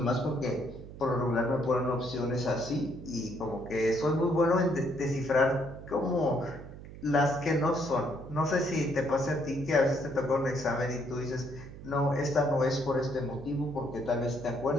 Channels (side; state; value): right; noise; hum, 14 dB below the sound